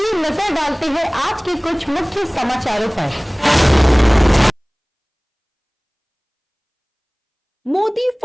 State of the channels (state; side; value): identical; both; correlation 1.00